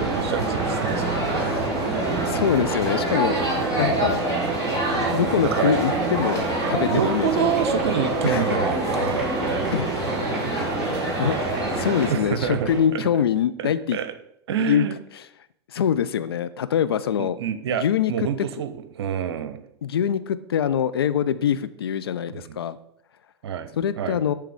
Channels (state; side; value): normal; both; correlation -0.13